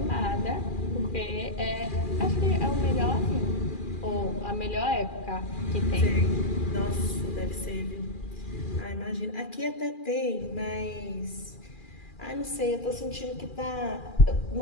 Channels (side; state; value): right; late; 2.4 ms